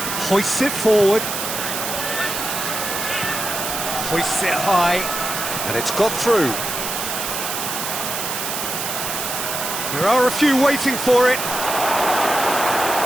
hoists it forward, hoists it high, and it's got through. There are a few waiting for it.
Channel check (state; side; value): noise; right; hiss, 3 dB below the sound